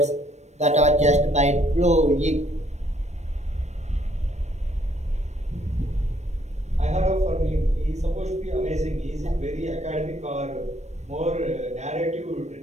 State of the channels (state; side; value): late; left; 0.33 ms